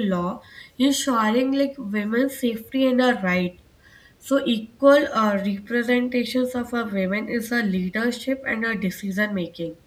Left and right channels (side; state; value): both; identical; correlation 1.00